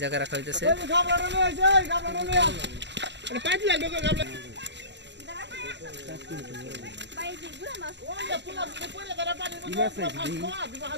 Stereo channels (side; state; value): left; late; 0.51 ms